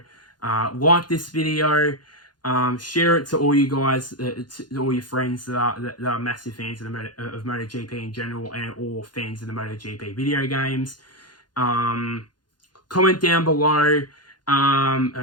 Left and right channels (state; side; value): late; right; 0.70 ms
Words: Like this video, share it to all you guys, to all your friends that are massive fans of MotoGP in general, and or fans of the MotoGP video games. Comment down below. How